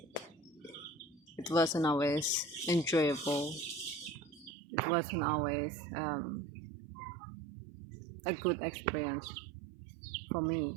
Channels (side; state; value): left; drops out; at 4.5 s